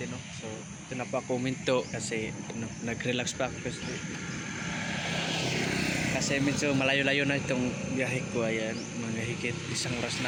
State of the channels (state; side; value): identical; both; correlation 1.00